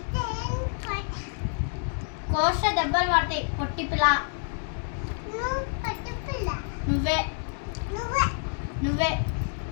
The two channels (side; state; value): right; silent; 59 dB below the other